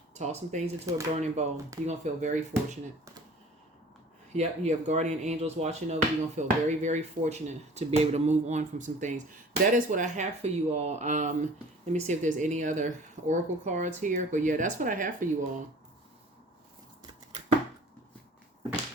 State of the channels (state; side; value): normal; both; correlation 0.46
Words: Toss some things into a burning bowl. You're going to feel very fortunate. Yep, you have guardian angels watching over you. You're going to feel very, very fortunate to be able to move on from some things. That is what I have for you all. Let me see if there's any other oracle cards here. But yeah, that's what I have for you all.